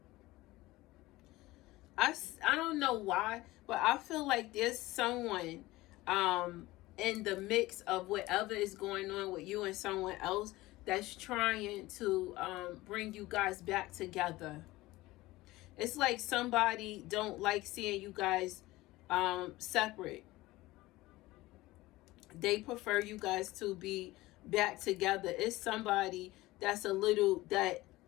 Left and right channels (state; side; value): quieter; right; 18.8 dB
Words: don't know why, but I feel like there's someone in the mix of whatever is going on with you and someone else that's trying to bring you guys back together. It's like somebody don't like seeing you guys separate. They prefer you guys to be back together. It's somebody that's a little, that